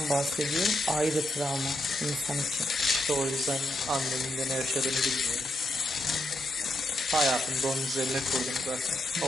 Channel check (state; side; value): normal; both; correlation 0.81